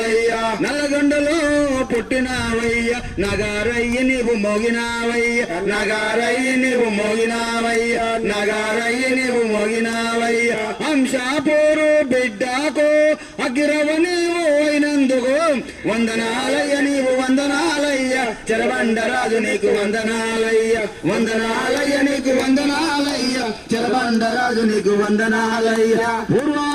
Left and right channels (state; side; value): identical; both; correlation 1.00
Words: నల్లగొండలో పుట్టినావయ్య నగారయ్య నీవు మోగినావయ్య నగారయ్య నీవు మోగినావయ్య నగారయ్య నీవు మోగినావయ్య అంశాపూరు బిడ్డకు అగిరవ నీవు అయినందుకు వందనాలయ్య నీవు వందనాలయ్య చెరబండరాజు నీకు వందనాలయ్య వందనాలయ్య నీకు వందనాలయ్య చెరబండరాజు నీకు వందనాలయ్య